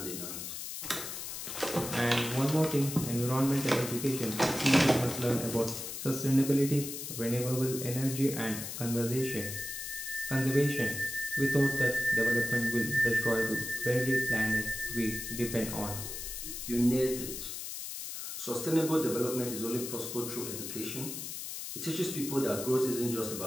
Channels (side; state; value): left; noise; hiss, 7 dB below the sound